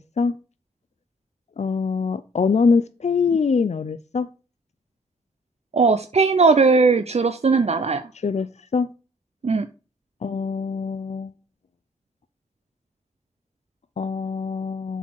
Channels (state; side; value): normal; both; correlation 0.56